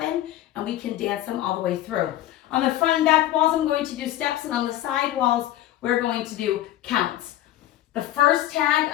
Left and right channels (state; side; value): quieter; right; 13.7 dB